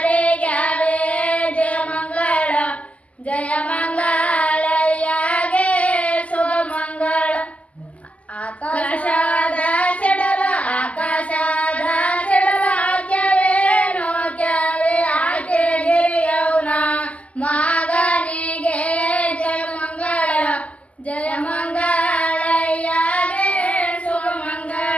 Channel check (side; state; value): right; late; 0.068 ms